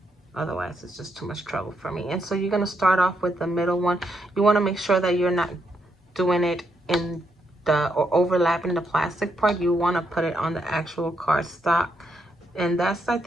otherwise it's just too much trouble for me. And so you're going to start off with the middle one. You want to make sure that you're not doing it in the, or overlapping the plastic part. You want to put it on the actual cardstock. And that's, I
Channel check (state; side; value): normal; both; correlation 0.79